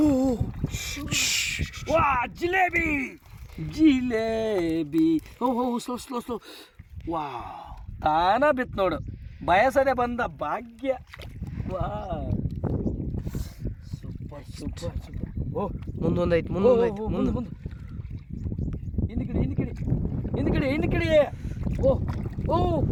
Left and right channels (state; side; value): identical; both; correlation 1.00